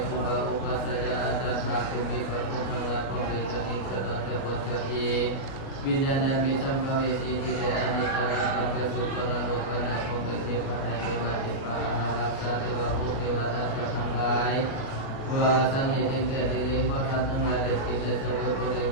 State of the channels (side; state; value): right; late; 37 ms